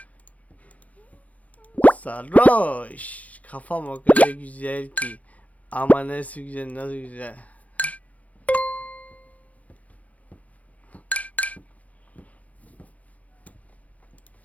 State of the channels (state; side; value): late; right; 0.070 ms